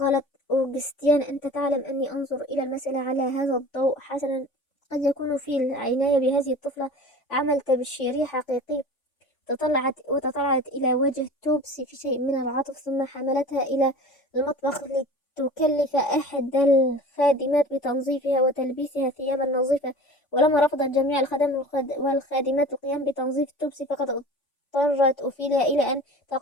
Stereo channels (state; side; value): late; right; 3.5 ms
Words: أوغستيان، أنت تعلم أني أنظر إلى المسألة على هذا الضوء. حسنا، قد يكون في العناية بهذه الطفلة عمل تبشيري حقيقي. وتطلعت إلى وجه توبسي في شيء من العطف، ثم حملتها إلى المطبخ لتكلف أحد الخادمات بتنظيفها وتلبيسها ثيابا نظيفة. ولما رفضت جميع الخدم والخادمات القيام بتنظيف توبسي، فقد اضطرت أوفيليا إلى أن